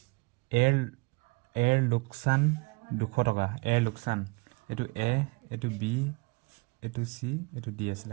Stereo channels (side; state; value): left; quieter; 26.9 dB